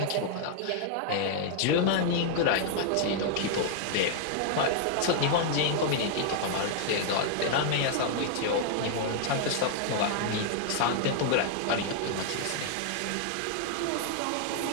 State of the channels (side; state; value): both; different; correlation 0.00